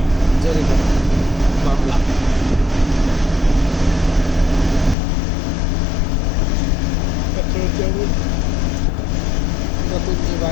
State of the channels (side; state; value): right; drops out; at 5.0 s